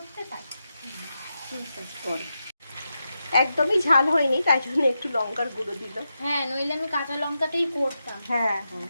তাই। একদমই ঝাল হয়নি, তাই জন্য একটু লঙ্কার গুঁড়ো দিল। হ্যাঁ, নইলে আমি কাঁচা লঙ্কাটাই করতাম। হ্যাঁ।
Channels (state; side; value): inverted; both; correlation -0.88